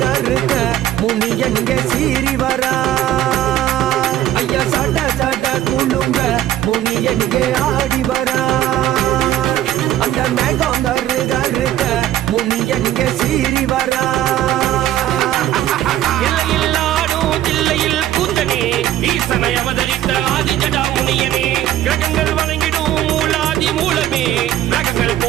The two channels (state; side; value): quieter; left; 12.7 dB